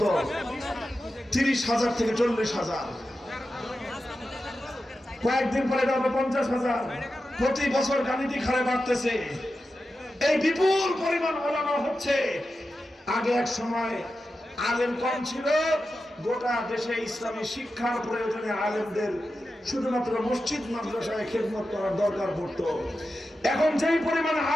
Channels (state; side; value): normal; both; correlation 0.91